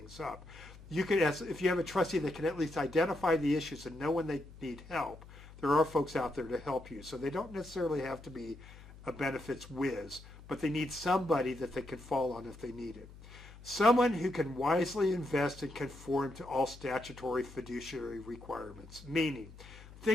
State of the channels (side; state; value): left; noise; hum, 18 dB below the sound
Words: up. You could, if you have a trustee that can at least identify the issues and know when they need help, there are folks out there to help you. So they don't necessarily have to be a benefits whiz, but they need somebody that they can fall on if they need it. Someone who can wisely invest and conform to all statutory fiduciary requirements, meaning,